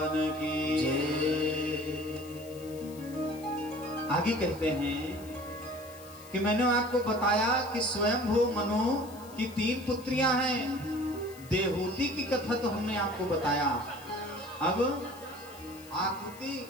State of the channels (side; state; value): left; noise; hiss, 20 dB below the sound